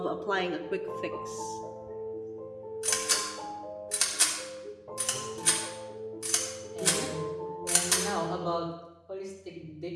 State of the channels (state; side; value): identical; both; correlation 1.00